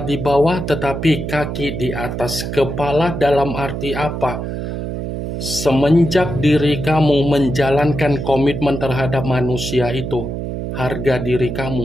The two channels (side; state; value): right; noise; hum, 5 dB below the sound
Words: di bawah tetapi kaki di atas. Kepala dalam arti apa? Semenjak diri kamu menjalankan komitmen terhadap manusia itu, harga diri